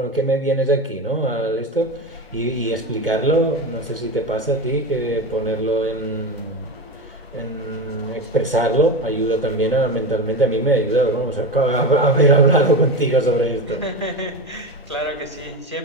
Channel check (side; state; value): both; normal; correlation 0.20